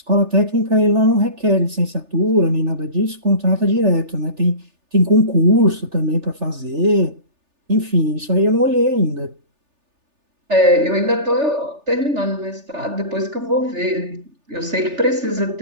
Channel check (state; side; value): late; left; 3.4 ms